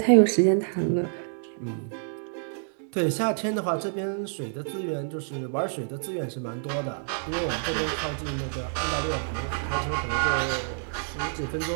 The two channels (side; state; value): left; silent; digital silence